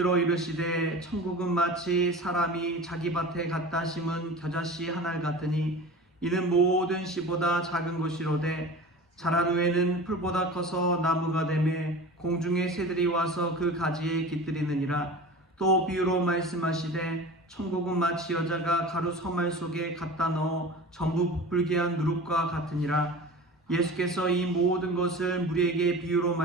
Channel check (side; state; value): both; normal; correlation 0.36